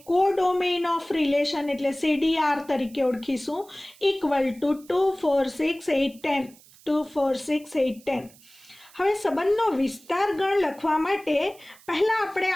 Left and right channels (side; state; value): right; noise; hiss, 25 dB below the sound